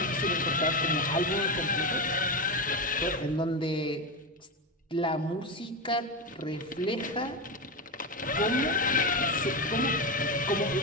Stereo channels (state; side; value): normal; both; correlation 0.15